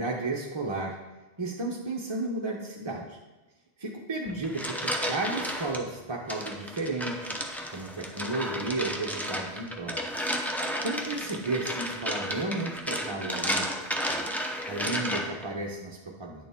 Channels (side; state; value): both; normal; correlation 0.06